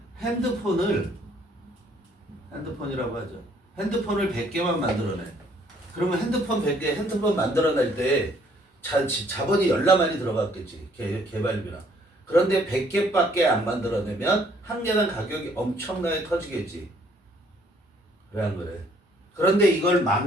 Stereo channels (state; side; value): normal; both; correlation 0.64